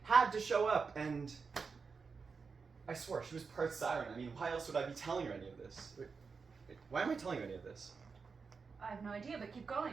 had to show up, and I swore she was part siren. I mean, why else would I be telling her any of this? Wait, why am I telling you any of this? I have no idea, but keep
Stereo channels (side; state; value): left; quieter; 5.1 dB